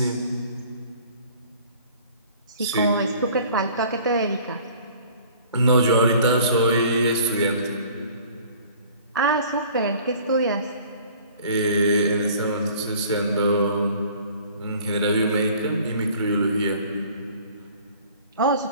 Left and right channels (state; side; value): inverted; both; correlation -0.50